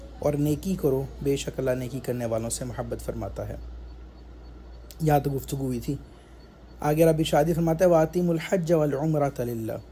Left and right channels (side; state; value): both; identical; correlation 1.00